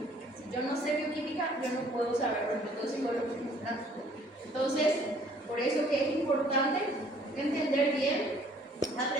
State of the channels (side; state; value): both; normal; correlation 0.59